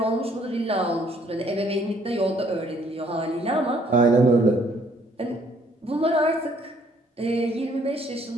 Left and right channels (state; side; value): normal; both; correlation 0.63